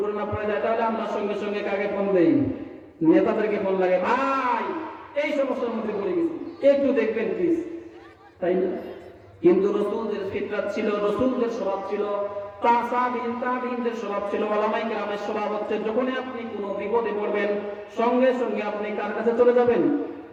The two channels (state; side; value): identical; both; correlation 1.00